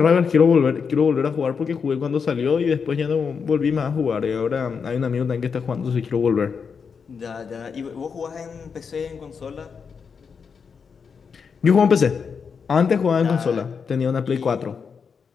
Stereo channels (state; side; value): quieter; right; 6.0 dB